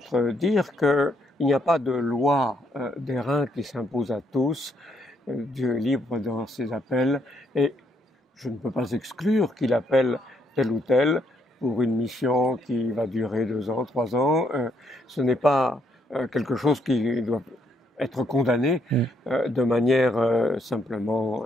dire qu'il n'y a pas de loi d'airain qui s'impose à tous. Dieu est libre dans ses appels et je ne peux pas exclure qu'il appelle tel ou tel pour une mission qui va durer 2 ans, 3 ans. Ce n'est pas quelque chose qui doit être condamné de manière simplement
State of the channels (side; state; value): both; normal; correlation 0.74